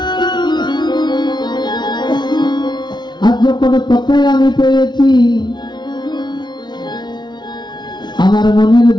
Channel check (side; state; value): right; late; 0.21 ms